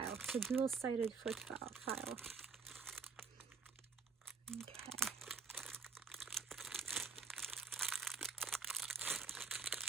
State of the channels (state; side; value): quieter; left; 5.0 dB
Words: It's a dual-sided foot file. Okay.